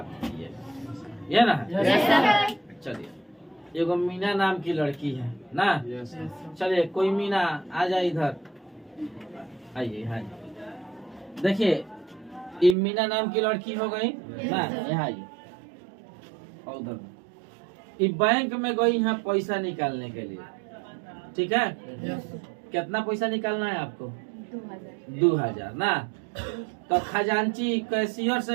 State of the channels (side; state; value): left; drops out; at 12.8 s